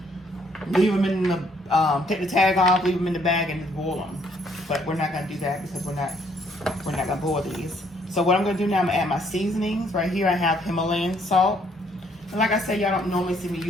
leave them in the take the tag off, leave them in the bag, and just boil them. But we're not gonna do that because we're not gonna boil these. So what I'm gonna do now, I'm gonna add my seasonings. Right here I have Himalayan salt. And like I said, y'all don't normally see me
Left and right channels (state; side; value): normal; both; correlation 0.67